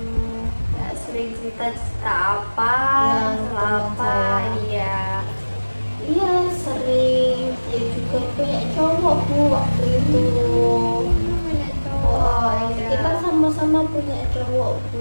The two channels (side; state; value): both; inverted; correlation -1.00